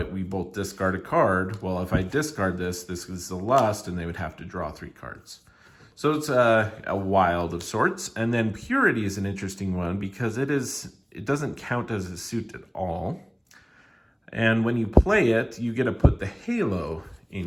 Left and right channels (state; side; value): identical; both; correlation 1.00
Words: we both discard a card, well, if I discard this is the lust and they would have to draw 3 cards. So it's a wild of sorts. And then purity is an interesting one because it doesn't count as a suit at all. And when you play it, you get to put the halo